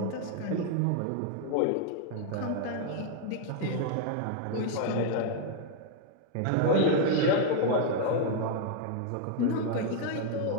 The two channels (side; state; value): both; different; correlation 0.00